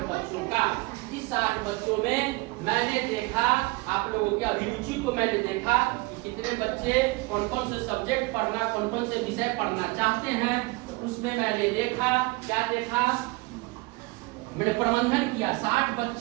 बच्चों का। इस 60 बच्चों में मैंने देखा, आप लोगों की अभिरुचि को मैंने देखा कि कितने बच्चे कौन कौन से सब्जेक्ट पढ़ना, कौन कौन से विषय पढ़ना चाहते हैं। तो उसमें मैंने देखा, क्या देखा? मैंने प्रबंधन किया 60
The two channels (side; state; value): left; quieter; 24.0 dB